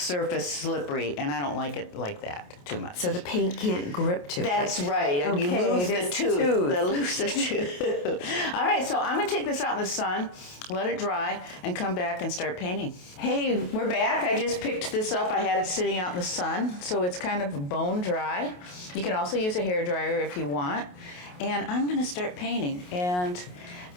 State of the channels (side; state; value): right; late; 28 ms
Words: slippery, and I don't like it like that too much. So the paint can't grip to it. That's right. Okay, you lose the tooth. Lose the tooth. All right, so I'm going to take this out in the sun, let it dry, and come back and start painting. Hey, we're back. I just picked this up. I had it sitting out in the sun, so it's kind of bone dry. You can also use a hairdryer if you want. And I'm going to start painting. And